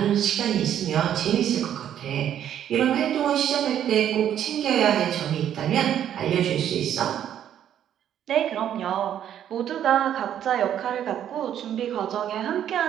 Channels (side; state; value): left; quieter; 10.2 dB